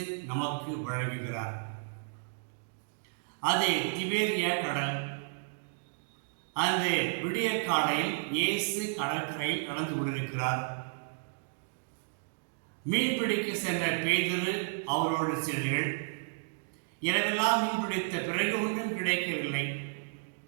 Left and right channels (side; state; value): left; silent; digital silence